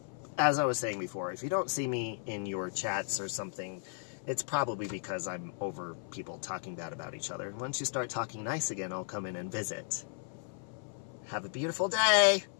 as I was saying before, if you don't see me in your chats or something, it's probably because I'm over people talking bad about each other. Once you start talking nice again, I'll come in and visit. Have a beautiful day!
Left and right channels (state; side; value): silent; right; 55 dB below the other